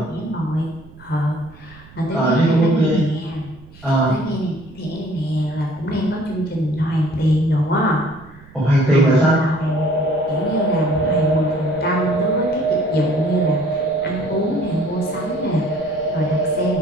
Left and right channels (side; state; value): right; noise; rumble, 22 dB below the sound